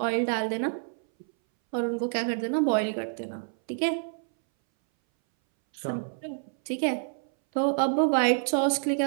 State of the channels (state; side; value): silent; left; 60 dB below the other